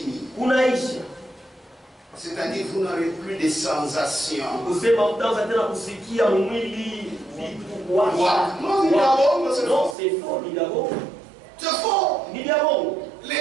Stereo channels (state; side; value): drops out; left; at 10.0 s